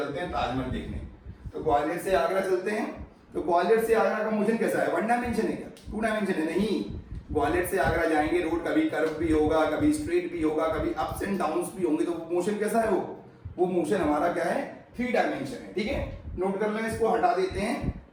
हैं ताजमहल देखने। तो ग्वालियर से आगरा चलते हैं, तो ग्वालियर से आगरा का मोशन कैसा है? 1 डायमेंशन है क्या? 2 डायमेंशन है? नहीं, ग्वालियर से आगरा जाएंगे, रोड कभी कर्व भी होगा, कभी स्ट्रेट भी होगा, कभी अप्स एंड डाउन्स भी होंगे, तो मोशन कैसा है? वो मोशन हमारा क्या है? 3 डायमेंशन है। ठीक है, नोट कर लें, इसको हटा देते हैं।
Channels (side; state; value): both; identical; correlation 1.00